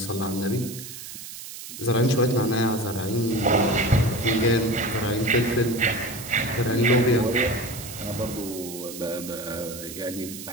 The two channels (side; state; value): right; noise; hiss, 11 dB below the sound